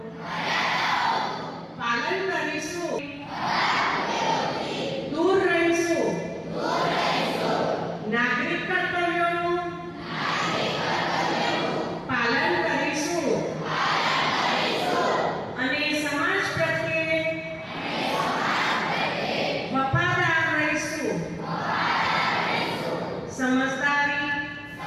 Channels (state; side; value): identical; both; correlation 1.00